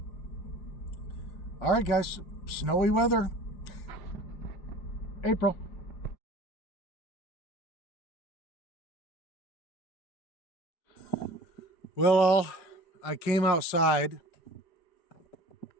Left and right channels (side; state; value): right; late; 5.0 ms